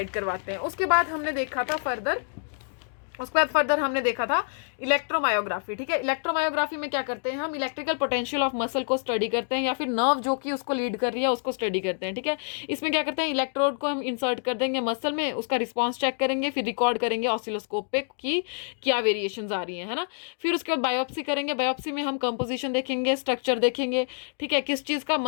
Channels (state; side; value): silent; right; 60 dB below the other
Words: करवाते हैं। उसके बाद हमने देखा था फर्दर उसके बाद फर्दर हमने देखा था इलेक्ट्रोमायोग्राफी, ठीक है। इलेक्ट्रोमायोग्राफी में क्या करते हैं हम, इलेक्ट्रिकल पोटेंशियल ऑफ मसल को स्टडी करते हैं या फिर नर्व जो कि उसको लीड कर रही है उसको स्टडी करते हैं, ठीक है। इसमें क्या करते हैं, इलेक्ट्रोड को हम इंसर्ट कर देंगे मसल में, उसका रिस्पॉन्स चेक करेंगे, फिर रिकॉर्ड करेंगे ऑसिलोस्कोप पे कि क्या वेरिएशंस आ रही है ना। फिर उसके बाद बायोप्सी करेंगे, बायोप्सी में हम कंपोजिशन देखेंगे, स्ट्रक्चर देखेंगे, ठीक है, किस चीज़ का,